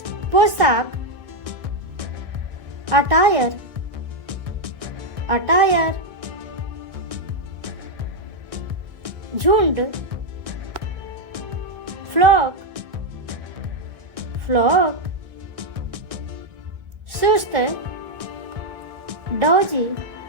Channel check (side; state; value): left; late; 1.6 ms